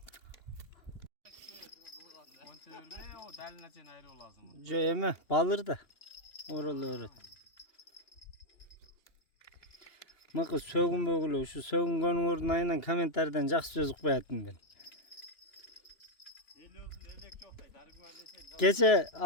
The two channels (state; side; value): late; right; 2.9 ms